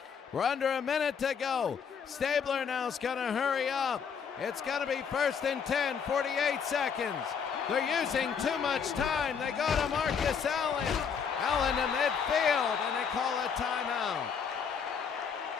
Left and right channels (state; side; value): quieter; right; 6.7 dB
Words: We're under a minute to go. Stabler now is going to hurry up. It's going to be 1st and 10, 48 seconds. They're using too much time. They go to Marcus Allen. Allen in midfield, and they call a timeout.